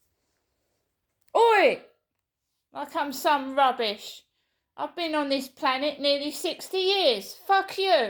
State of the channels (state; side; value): identical; both; correlation 1.00